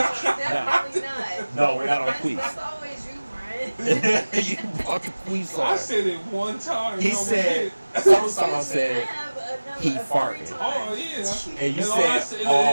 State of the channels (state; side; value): inverted; both; correlation -1.00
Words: Definitely not. No, we're not on That's Queefs. always you, Brian. You brought the Queefs I on. said it one time. He no said, one some I song said, have another he a farted. free did. time. Oh yeah. and you all I said